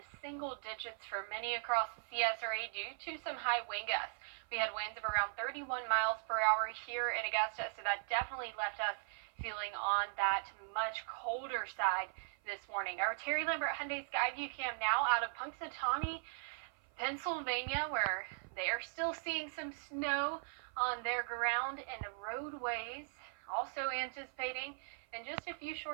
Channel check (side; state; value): left; silent; 52 dB below the other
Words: single digits for many across the CSRA due to some high wind gusts. We had winds of around 31 miles per hour here in Augusta, so that definitely left us feeling on that much colder side this morning. Our Terry Lambert Hyundai Skyview cam now out of Punxsutawney, Pennsylvania, where they are still seeing some snow on their ground and roadways. Also anticipating in just a few